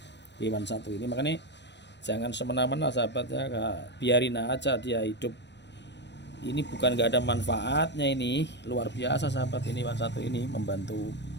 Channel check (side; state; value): right; late; 0.51 ms